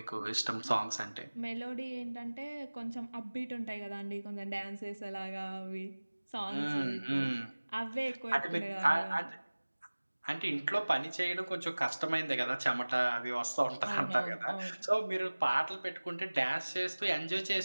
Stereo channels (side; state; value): both; inverted; correlation -1.00